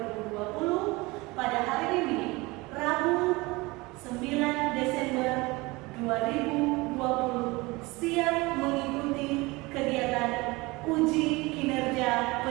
Pada hari ini, Rabu 9 Desember 2020, siap mengikuti kegiatan uji kinerja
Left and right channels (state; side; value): quieter; left; 23.1 dB